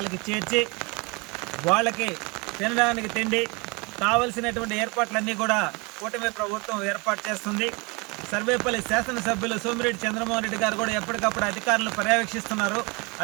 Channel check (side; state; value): left; quieter; 28.4 dB